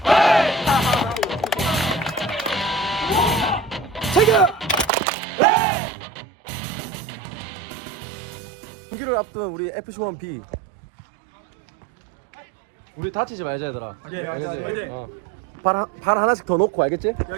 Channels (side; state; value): left; drops out; at 4.9 s